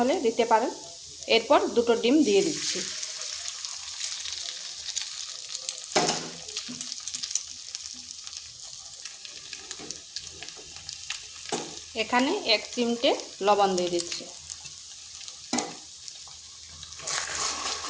দিতে পারেন। এরপর দুটো ডিম দিয়ে দিচ্ছি। এখানে 1 চিমটে লবণ দিয়ে দিচ্ছি।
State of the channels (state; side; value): identical; both; correlation 1.00